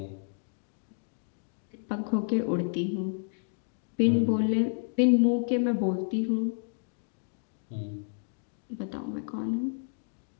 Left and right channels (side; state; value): right; silent; digital silence